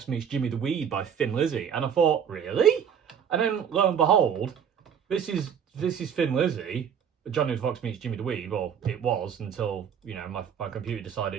Meets Jimmy the Weed by Thin Lizzy, and I thought, really? And then lo and behold, this is Thin Lizzy. Johnny Fox Meets Jimmy the Weed. Well, it was until, you know, my computer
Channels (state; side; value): quieter; left; 7.9 dB